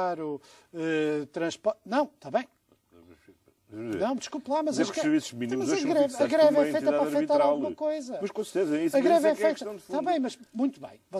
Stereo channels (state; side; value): identical; both; correlation 1.00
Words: transporte... Não, está bem. Não, desculpe lá, mas os serviços mínimos a greve é feita para afetar alguma coisa. Mas com certeza, é isso. A greve é feita... Está bem, mas muito bem,